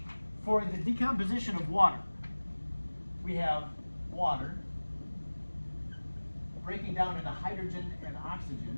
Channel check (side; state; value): both; inverted; correlation -1.00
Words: for the decomposition of water, we have water breaking down into hydrogen and